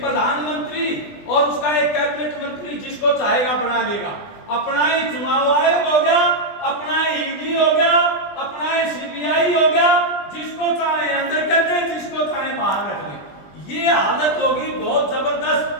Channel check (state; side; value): late; right; 20 ms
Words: और उसका एक कैबिनेट मंत्री जिसको चाहेगा बना लेगा। अपना ही चुनाव आयोग हो गया, अपना ही ईडी हो गया, अपना ही सीबीआई हो गया, जिसको चाहे अंदर कर दे, जिसको चाहे बाहर रख ले। ये हालत होगी बहुत जबरदस्त।